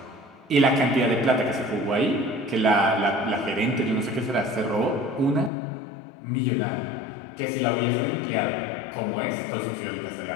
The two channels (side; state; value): right; drops out; at 5.5 s